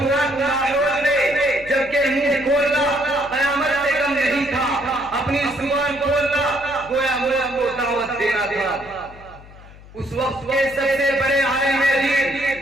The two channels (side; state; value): left; noise; hum, 20 dB below the sound